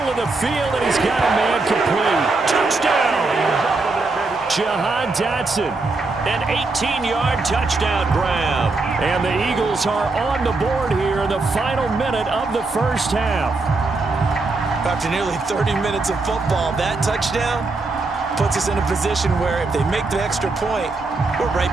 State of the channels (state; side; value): quieter; left; 3.5 dB